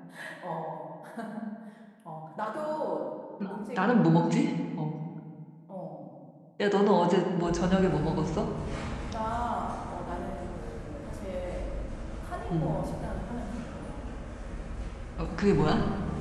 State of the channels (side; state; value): both; identical; correlation 1.00